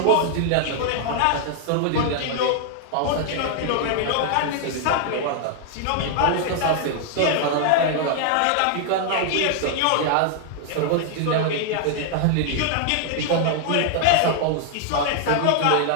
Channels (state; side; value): different; both; correlation 0.00